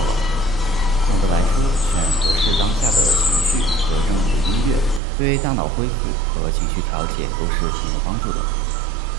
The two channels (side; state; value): left; drops out; at 5.0 s